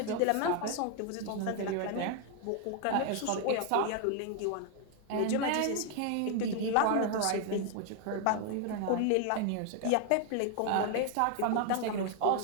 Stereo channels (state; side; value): different; both; correlation 0.01